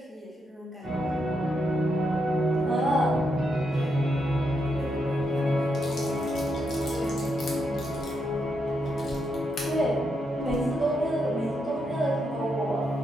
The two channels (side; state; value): both; normal; correlation 0.81